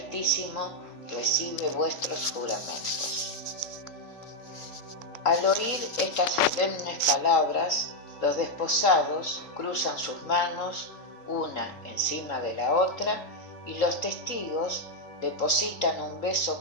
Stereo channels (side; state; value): right; late; 3.8 ms